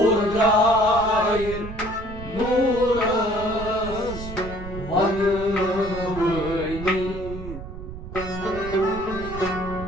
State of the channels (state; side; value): noise; right; rumble, 11 dB below the sound